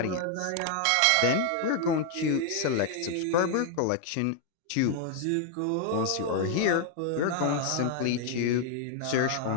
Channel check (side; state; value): both; different; correlation 0.00